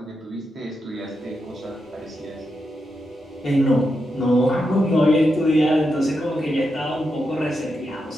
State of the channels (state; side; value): normal; both; correlation 0.86